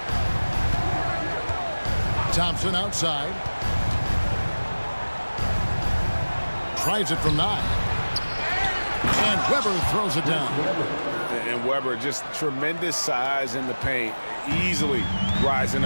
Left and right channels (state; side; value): inverted; both; correlation -1.00